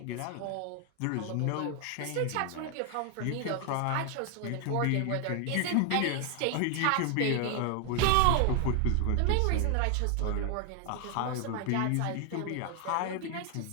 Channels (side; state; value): both; different; correlation 0.00